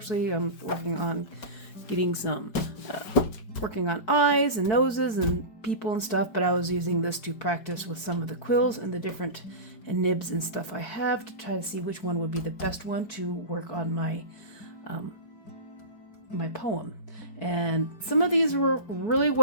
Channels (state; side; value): late; right; 4.6 ms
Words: I'm working on getting some, working on eyes and noses and people and stuff, but I was using this to practice with some of the quills and the different nibs and stuff I have to try to see which one would be the best one to work on my my poem. And some of these were really